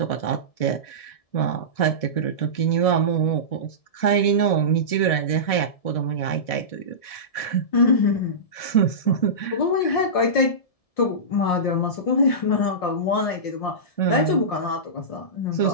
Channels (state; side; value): late; right; 1.7 ms